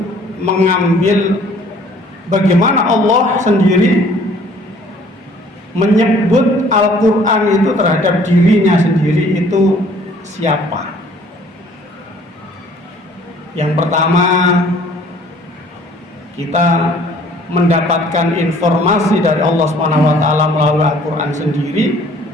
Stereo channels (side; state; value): both; normal; correlation 0.56